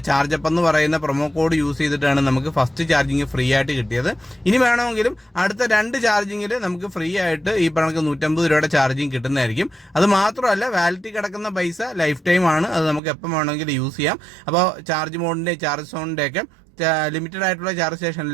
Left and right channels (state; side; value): drops out; left; at 13.0 s